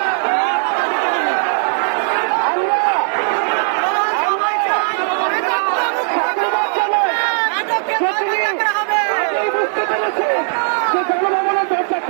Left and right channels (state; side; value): silent; left; digital silence